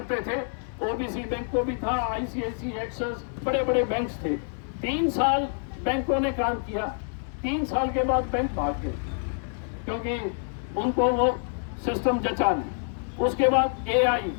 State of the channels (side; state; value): right; silent; 60 dB below the other